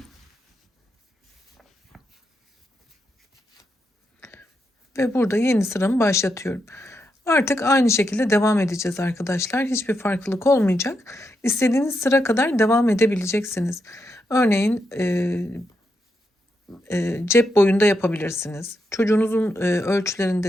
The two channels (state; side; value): normal; both; correlation 0.83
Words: Ve burada yeni sıramı başlatıyorum. Artık aynı şekilde devam edeceğiz arkadaşlar. Hiçbir farklılık olmayacak. İstediğiniz sıra kadar devam edebileceksiniz. Örneğin cep boyunda yapabilirsiniz. Çocuğunuzun